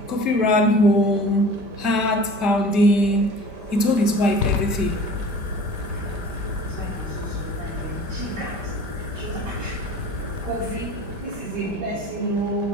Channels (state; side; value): late; left; 5.1 ms